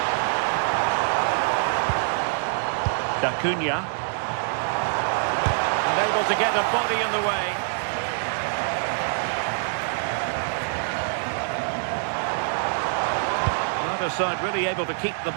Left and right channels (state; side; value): silent; left; digital silence